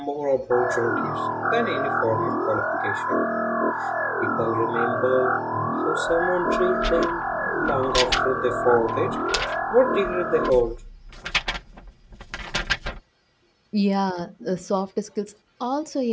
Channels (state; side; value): identical; both; correlation 1.00